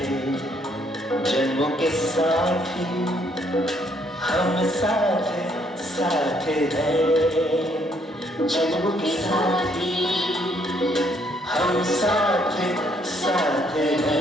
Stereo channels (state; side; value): normal; both; correlation 0.69